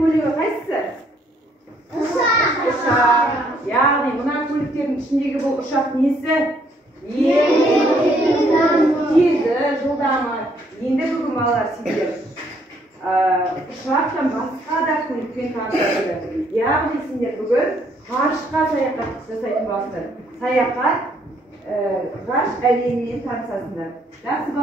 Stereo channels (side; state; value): both; normal; correlation 0.68